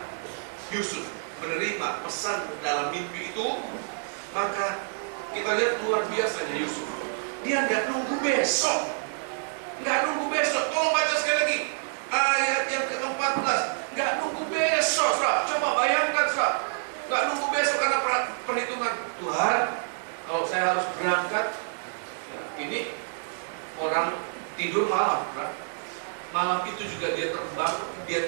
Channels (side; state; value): left; silent; 58 dB below the other